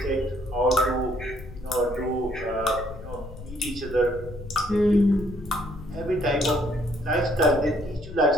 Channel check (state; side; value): noise; left; rumble, 14 dB below the sound